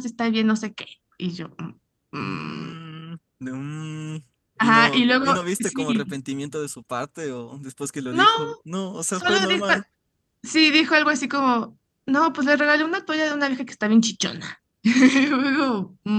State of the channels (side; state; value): both; identical; correlation 1.00